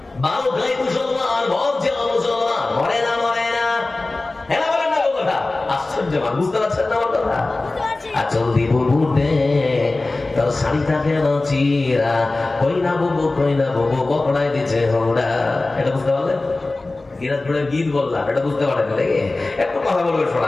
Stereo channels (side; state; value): right; quieter; 3.1 dB